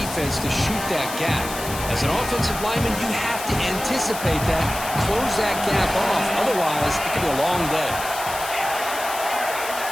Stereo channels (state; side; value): noise; left; hiss, 9 dB below the sound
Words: to shoot that gap? As an offensive lineman, you have to anticipate that, close that gap off. Otherwise, it could be a long day.